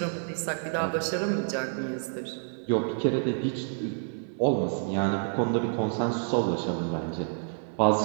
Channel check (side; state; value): left; silent; 59 dB below the other